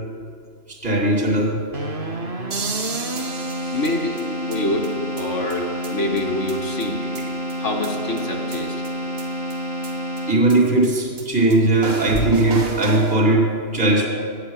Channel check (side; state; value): right; late; 2.9 ms